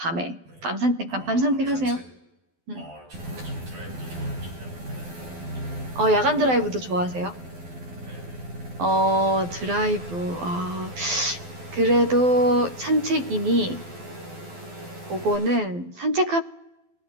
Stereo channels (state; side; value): late; left; 12 ms